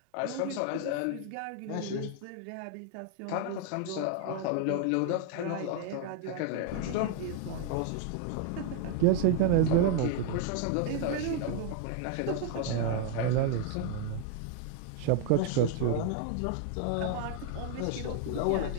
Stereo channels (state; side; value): different; both; correlation 0.00